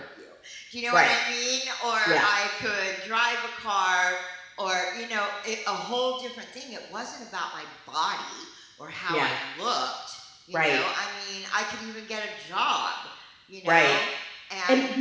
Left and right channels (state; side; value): identical; both; correlation 1.00